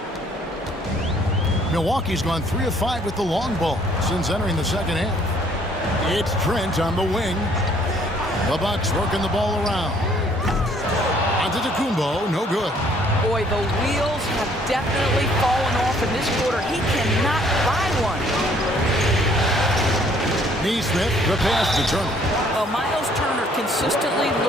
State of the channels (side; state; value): both; normal; correlation 0.62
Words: Milwaukee's gone 3 of 5 with the long ball since entering the second half. It's Trent on the wing. The Bucks working the ball around. Antetokounmpo, no good. Boy, the wheels have definitely fallen off in this quarter. He cannot buy one. Neesmith, the pass to Turner. Well, Miles Turner consistently